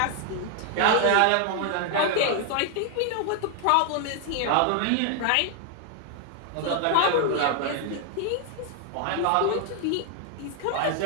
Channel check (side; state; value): both; different; correlation 0.00